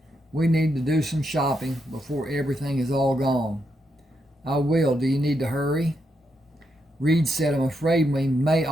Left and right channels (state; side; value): normal; both; correlation 0.81